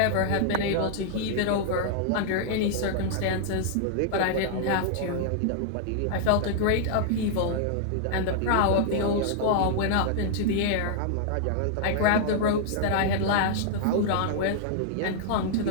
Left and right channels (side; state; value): both; different; correlation -0.01